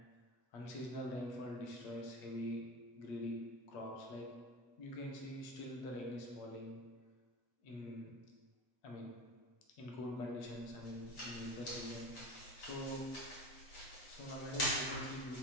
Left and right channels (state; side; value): late; right; 8.0 ms